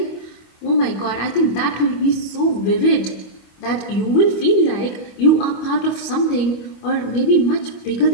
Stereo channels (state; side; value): late; right; 25 ms